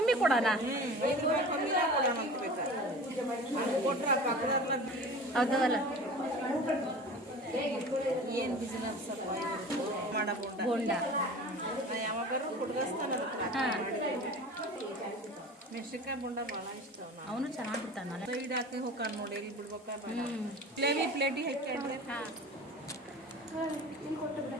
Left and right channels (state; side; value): normal; both; correlation 0.38